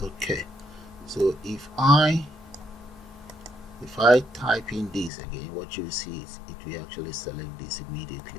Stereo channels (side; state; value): right; drops out; at 5.1 s